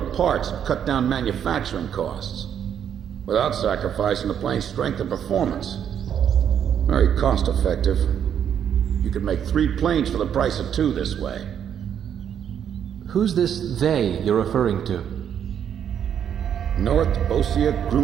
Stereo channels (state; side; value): quieter; left; 8.8 dB